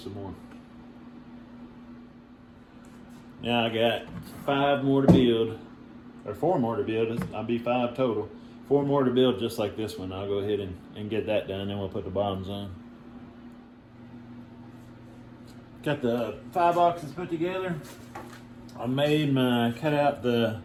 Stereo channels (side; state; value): both; identical; correlation 1.00